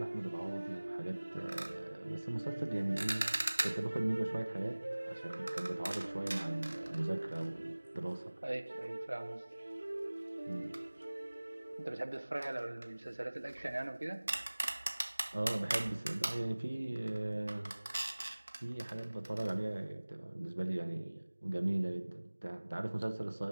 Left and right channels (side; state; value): both; inverted; correlation -1.00